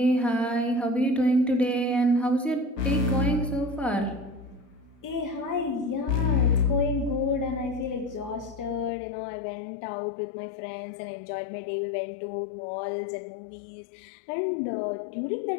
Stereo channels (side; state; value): right; drops out; at 8.9 s